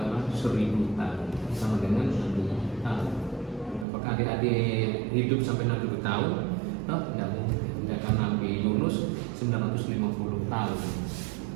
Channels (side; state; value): left; drops out; at 3.9 s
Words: 1000 tahun, sama dengan 6000 tahun. Apakah adik-adik hidup sampai 6000 tahun? No, tidak mungkin. Sedangkan Nabi Yunus 950 tahun.